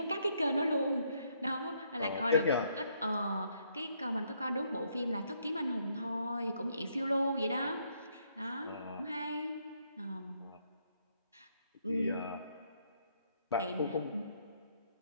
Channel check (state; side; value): inverted; both; correlation -0.72